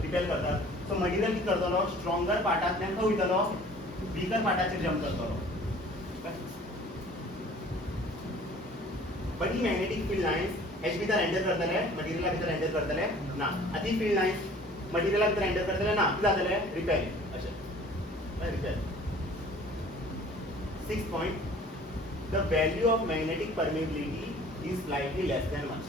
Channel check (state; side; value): normal; both; correlation 0.50